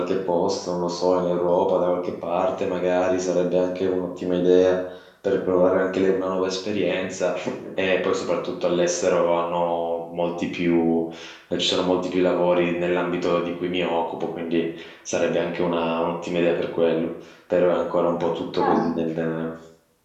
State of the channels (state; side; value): identical; both; correlation 1.00